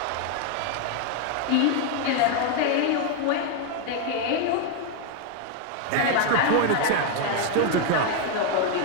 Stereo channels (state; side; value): different; both; correlation 0.01